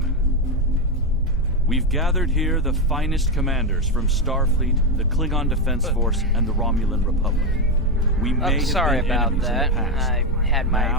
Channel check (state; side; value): normal; both; correlation 0.09